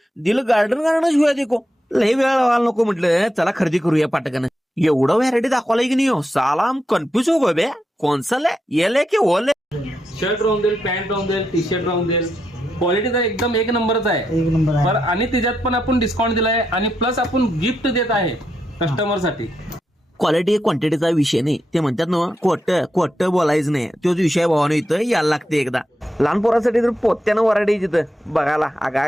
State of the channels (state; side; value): normal; both; correlation 0.84